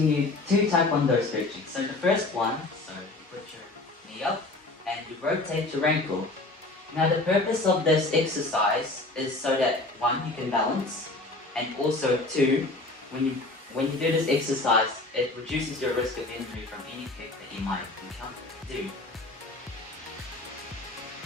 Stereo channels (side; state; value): right; quieter; 3.0 dB